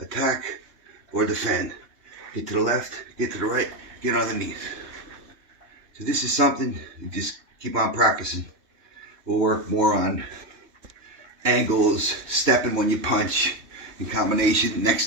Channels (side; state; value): left; late; 3.2 ms